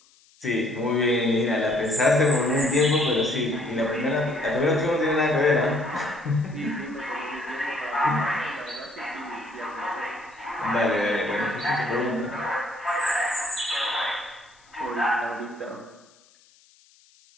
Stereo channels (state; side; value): noise; left; hiss, 30 dB below the sound